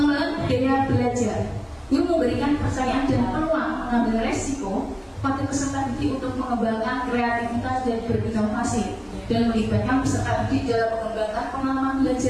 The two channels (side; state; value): both; identical; correlation 1.00